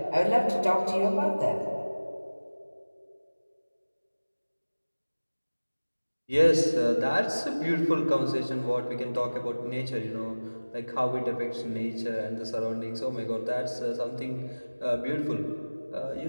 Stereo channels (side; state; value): both; inverted; correlation -1.00